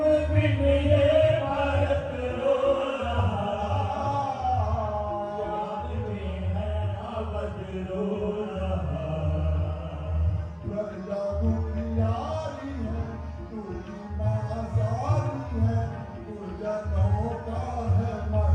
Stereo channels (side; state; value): both; identical; correlation 1.00